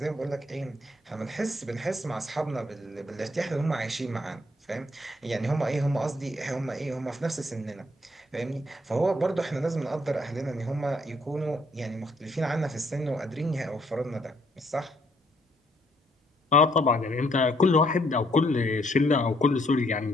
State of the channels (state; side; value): normal; both; correlation 0.68